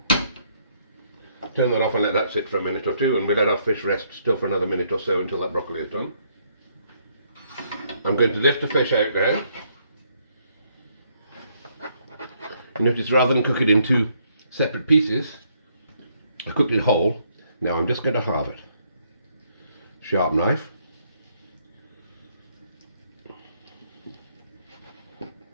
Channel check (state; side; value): inverted; both; correlation -0.71